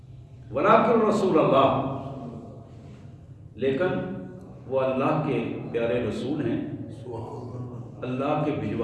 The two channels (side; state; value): both; identical; correlation 1.00